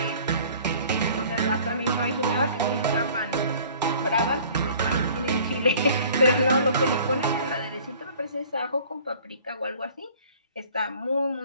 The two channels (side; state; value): both; inverted; correlation -0.50